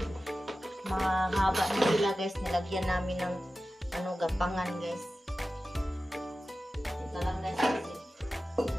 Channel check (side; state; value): both; normal; correlation 0.95